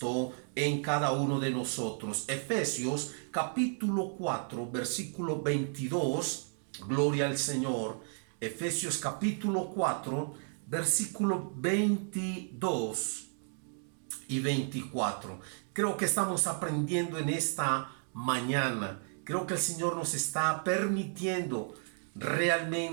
en cada uno de nosotros. Efesios capítulo 4, versículo 22, gloria al Señor. Efesios capítulo 4, versículo 22 y 24. Creo que estamos aprendiendo en esta mañana. Creo que el Señor nos está permitiendo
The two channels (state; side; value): silent; left; 56 dB below the other